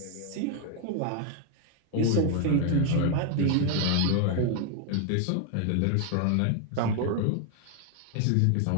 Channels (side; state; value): both; different; correlation 0.00